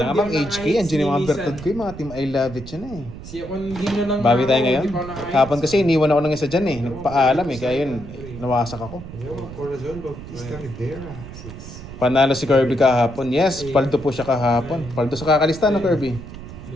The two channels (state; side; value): noise; right; rumble, 13 dB below the sound